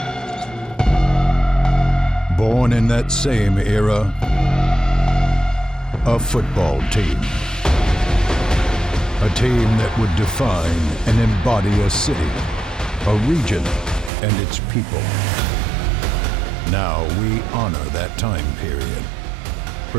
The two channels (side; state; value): left; drops out; at 14.1 s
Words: Born in that same era, a football team. A team that would define and embody a city, a region, and its people. Now we honor that time period,